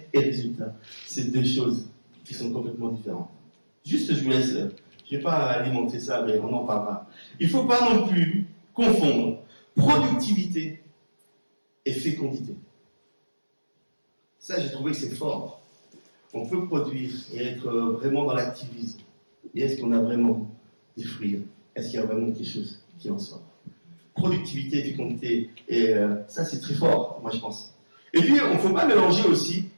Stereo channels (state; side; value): inverted; both; correlation -1.00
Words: et résultat, c'est deux choses qui sont complètement différentes. Juste, je vous laisse, je ne vais pas alimenter ça, mais on en parlera. Il ne faut pas non plus confondre productivité et fécondité. Ça, j'ai trouvé que c'est fort. On peut produire et être vraiment dans l'activisme. Mais est-ce qu'on a vraiment des fruits? Est-ce qu'il y a vraiment quelque chose qui en sort? Productivité et fécondité, et ça, c'est très fort, moi, je pense. Et puis, on ne faut pas mélanger aussi